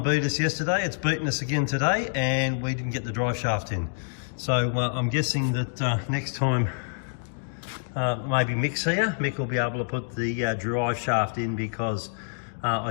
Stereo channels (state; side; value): silent; right; digital silence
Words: us yesterday, it's beaten us again today, and we didn't get the drive shaft in. So I'm guessing that next time maybe Mick's here, Mick will be able to put the drive shaft in, because I